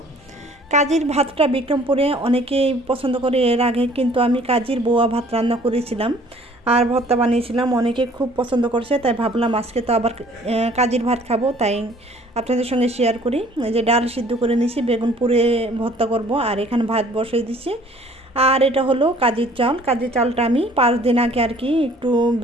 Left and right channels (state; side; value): normal; both; correlation 0.55